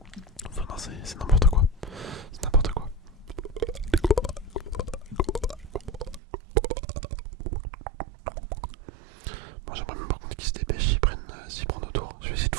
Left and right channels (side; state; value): left; drops out; at 6.2 s